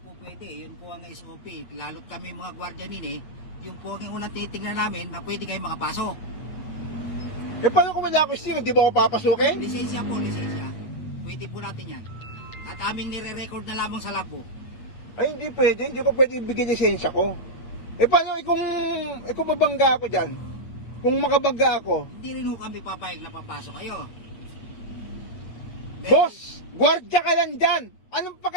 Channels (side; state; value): right; late; 8.9 ms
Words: po pwede. Yun po ang SOP. Lalo't kami mga gwardiyanin yun po ang unang titignan namin na pwede kayo makapasok. Paano kung wala ako sticker? Di ba ako papasukin? Lisensya po, lisensya. Pwede po natin yan. At aming nire-record na lamang sa logbook. Ay, hindi pwede. Hindi ko pwede ibigay lisensya ko. Paano kung mabangga ako dyan? Kung makabangga ako? Hindi rin ho kami papayag na papasok kayo. Boss, gwardya ka lang dyan. Anong